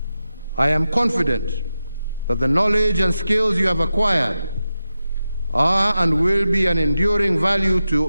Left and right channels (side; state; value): both; inverted; correlation -0.91